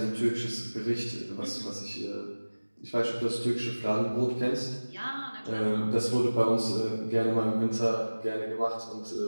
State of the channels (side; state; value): both; inverted; correlation -1.00